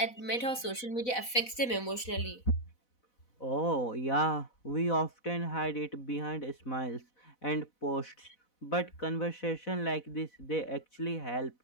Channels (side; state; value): right; late; 4.0 ms